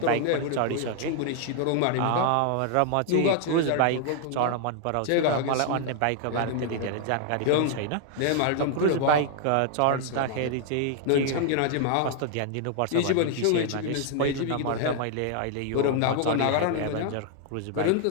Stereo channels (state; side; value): different; both; correlation 0.00